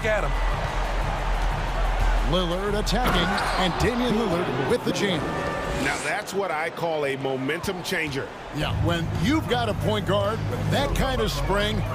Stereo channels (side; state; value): both; identical; correlation 1.00